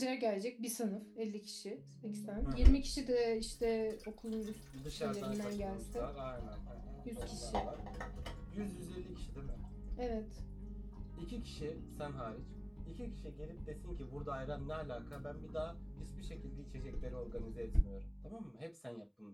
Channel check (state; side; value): identical; both; correlation 1.00